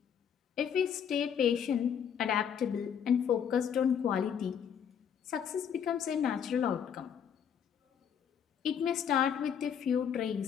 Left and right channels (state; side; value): quieter; right; 8.0 dB